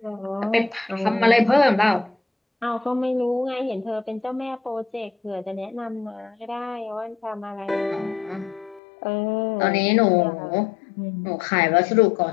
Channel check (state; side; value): drops out; right; at 8.8 s